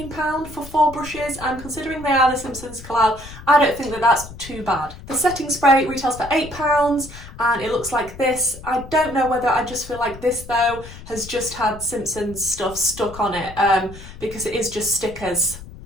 for 4 brushes, and considering they are the Simpsons collab, I don't think that that's too bad. The setting spray retails for £8 and it looks like this. I don't know whether I just feel like this though has just had Simpsons stuff stuck on it because it is just stickers,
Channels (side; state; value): left; noise; rumble, 15 dB below the sound